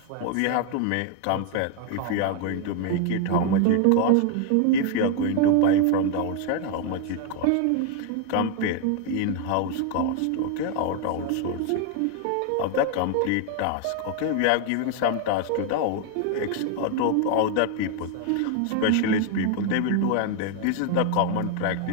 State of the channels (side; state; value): both; different; correlation 0.00